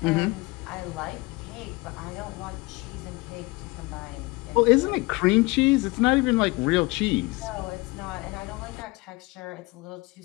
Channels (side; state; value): right; quieter; 23.6 dB